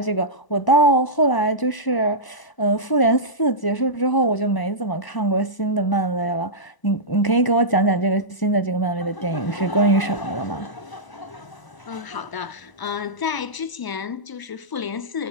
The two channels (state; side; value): late; right; 1.0 ms